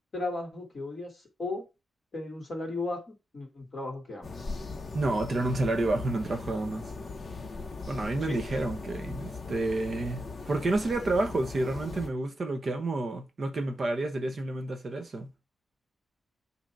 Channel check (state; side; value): normal; both; correlation 0.87